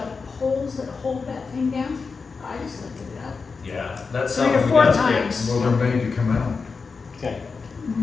poles that hold that thing down, I just lifted it up. Yeah, that's 3 or something we 4 gotta times. fix. Well, they're made to come out. Okay.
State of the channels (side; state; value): right; quieter; 4.8 dB